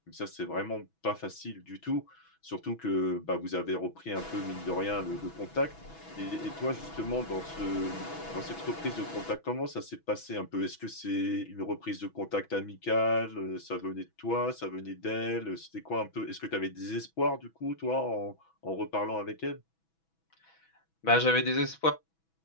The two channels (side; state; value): right; late; 6.1 ms